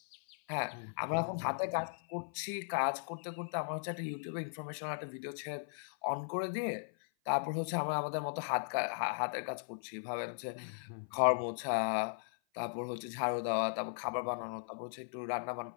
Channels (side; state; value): right; silent; 53 dB below the other